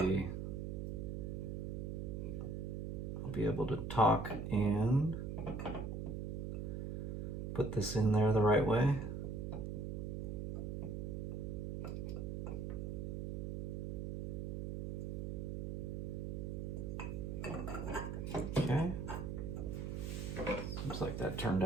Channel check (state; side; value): noise; right; hum, 3 dB below the sound